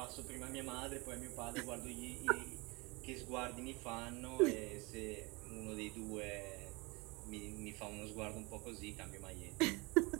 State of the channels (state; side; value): quieter; left; 26.6 dB